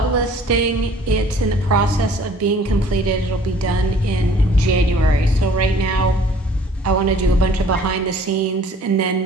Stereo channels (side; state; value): both; normal; correlation 0.54